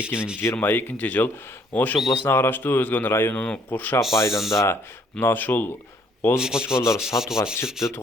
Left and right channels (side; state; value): both; normal; correlation 0.65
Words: жыл Ош областына караштуу Өзгөн районунун Куршап айылында мына ушул козу кочкорлор сатууга чыкты.